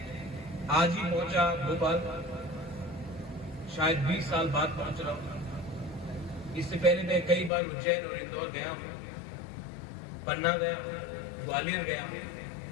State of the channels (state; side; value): drops out; right; at 7.5 s